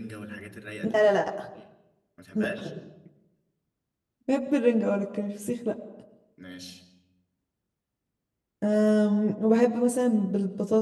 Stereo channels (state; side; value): identical; both; correlation 1.00